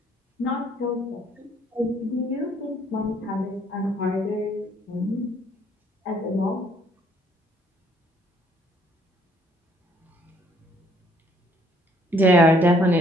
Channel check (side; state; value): both; normal; correlation 0.64